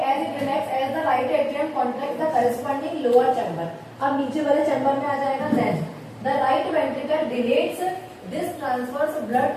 as it relax as the right atrium contract the corresponding lower chamber. अब नीचे वाले चैम्बर में आ जाएगा। Then the right ventricle dilates this transfers blood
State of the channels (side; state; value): both; identical; correlation 1.00